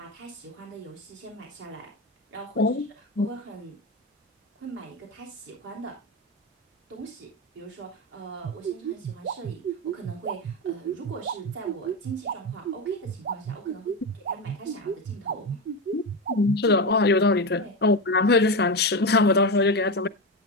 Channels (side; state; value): both; normal; correlation 0.16